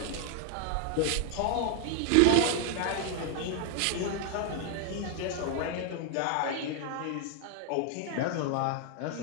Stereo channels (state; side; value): different; both; correlation 0.00